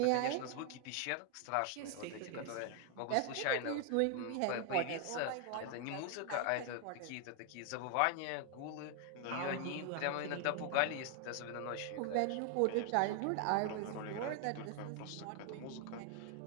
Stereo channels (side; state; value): both; different; correlation 0.00